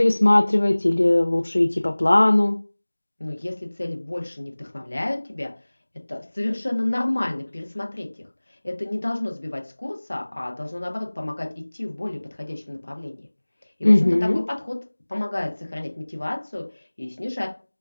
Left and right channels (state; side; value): inverted; both; correlation -1.00